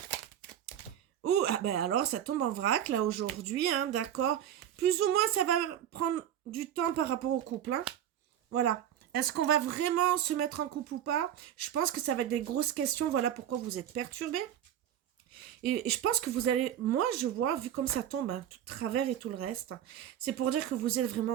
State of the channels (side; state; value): left; quieter; 10.6 dB